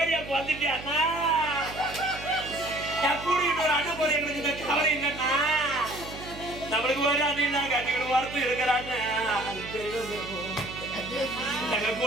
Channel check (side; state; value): right; noise; hum, 13 dB below the sound